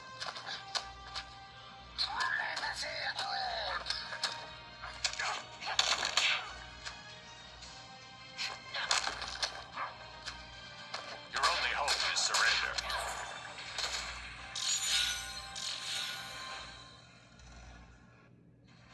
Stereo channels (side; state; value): both; identical; correlation 1.00